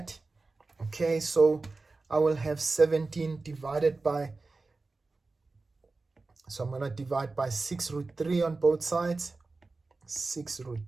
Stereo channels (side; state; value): left; quieter; 3.6 dB